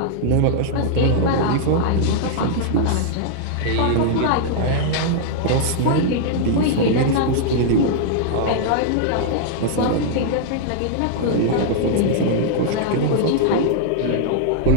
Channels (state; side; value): different; both; correlation -0.01